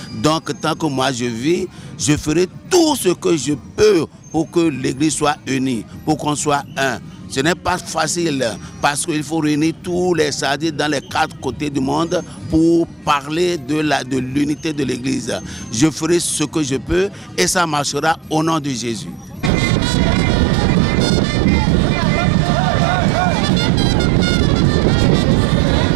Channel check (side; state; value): left; drops out; at 19.5 s